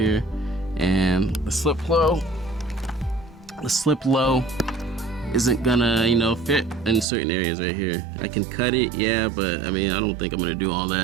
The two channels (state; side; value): drops out; left; at 7.1 s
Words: and the SlipLo isn't gonna fit in certain areas right here. I can cut it, yeah, but I mean, I don't think I'm gonna do all